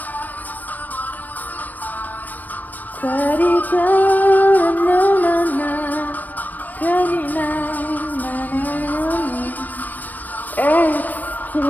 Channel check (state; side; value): late; right; 0.082 ms